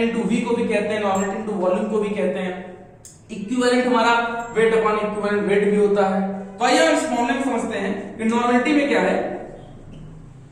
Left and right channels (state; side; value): identical; both; correlation 1.00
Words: into V को भी कहते हैं, नॉर्मेलिटी इनटू वॉल्यूम को भी कहते हैं। इक्विवेलेंट हमारा वेट अपॉन इक्विवेलेंट वेट भी होता है। तो आइए हम इस फॉर्मूले में समझते हैं कि नॉर्मेलिटी में क्या है।